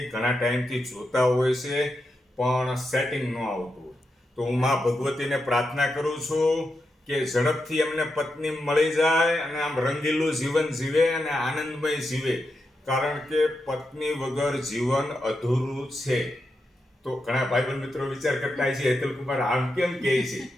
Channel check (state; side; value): normal; both; correlation 0.87